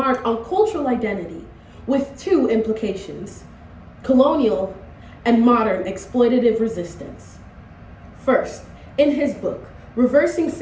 on cultural identity with two implications: colonial and modern exploitative resistance. First, in his book, Reversing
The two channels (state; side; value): identical; both; correlation 1.00